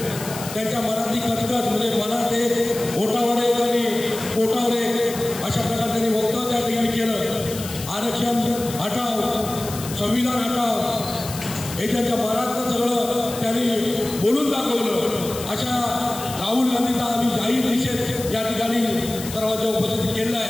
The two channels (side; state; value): left; noise; hiss, 11 dB below the sound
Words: त्यांच्या मनातली कटकट म्हणजे मनात एक ओटावर एक आणि पोटावर एक अशा प्रकारे त्यांनी वक्तव्य त्या ठिकाणी केलं। आरक्षण हटाव, संविधान हटाव हे त्यांच्या मनातलं सगळं त्यांनी बोलून दाखवलं। अशा राहुल गांधीचा आम्ही जाहीर निषेध या ठिकाणी सर्वांच्या उपस्थितीत केलेला